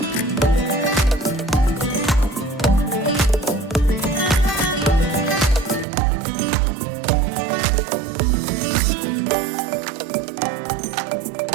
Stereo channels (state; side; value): drops out; left; at 5.9 s